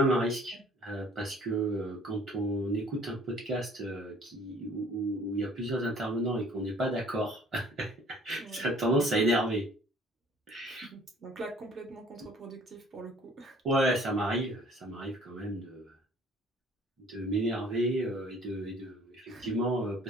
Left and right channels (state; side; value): normal; both; correlation 0.54